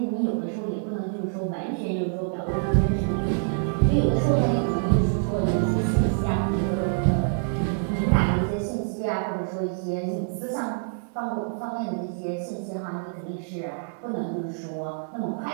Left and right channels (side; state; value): left; silent; 61 dB below the other